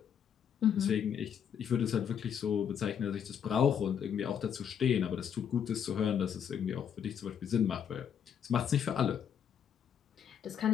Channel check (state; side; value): quieter; right; 8.2 dB